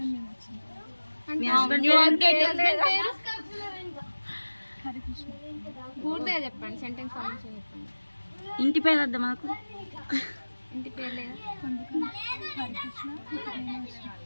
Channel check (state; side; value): inverted; both; correlation -1.00